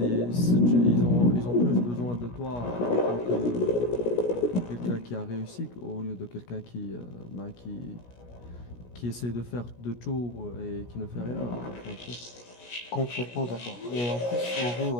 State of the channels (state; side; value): late; right; 17 ms